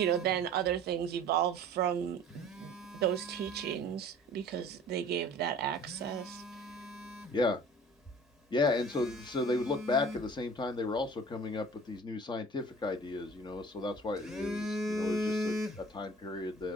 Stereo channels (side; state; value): both; normal; correlation 0.46